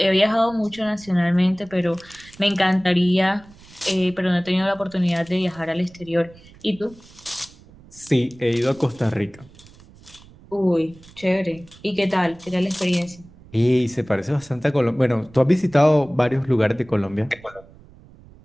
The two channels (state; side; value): noise; right; rumble, 23 dB below the sound